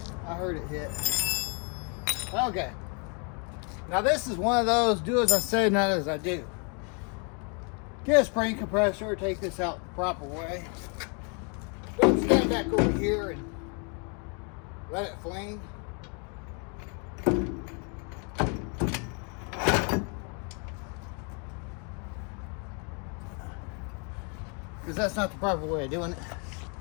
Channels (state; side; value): quieter; right; 37.2 dB